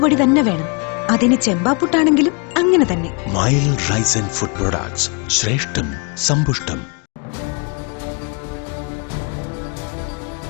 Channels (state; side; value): quieter; right; 33.7 dB